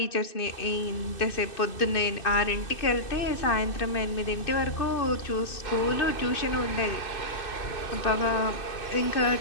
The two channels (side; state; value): right; late; 2.6 ms